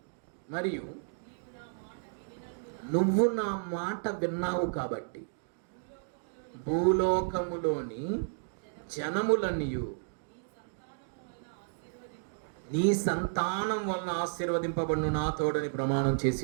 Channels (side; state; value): left; silent; digital silence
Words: మరియు నువ్వు నా మాట విన్నావు కాబట్టి భూలోకములోని జనములన్నీయు నీ సంతానం వలన ఆశీర్వదింపబడును, నా తోడని ప్రమాణం చేసి